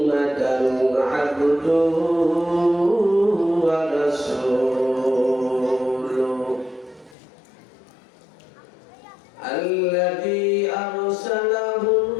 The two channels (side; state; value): right; drops out; at 7.2 s